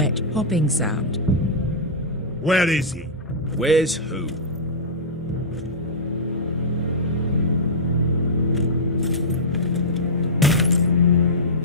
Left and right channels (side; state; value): both; normal; correlation -0.12